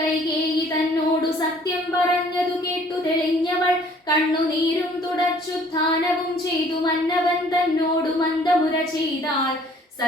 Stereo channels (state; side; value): normal; both; correlation 0.57